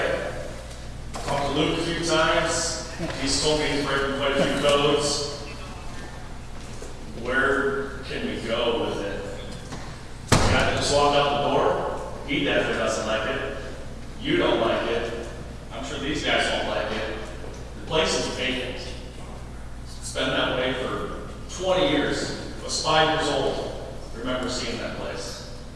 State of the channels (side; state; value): both; identical; correlation 1.00